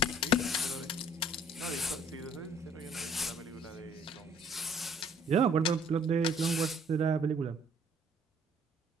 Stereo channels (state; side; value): normal; both; correlation 0.58